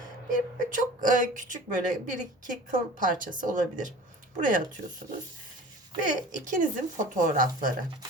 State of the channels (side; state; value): both; normal; correlation 0.41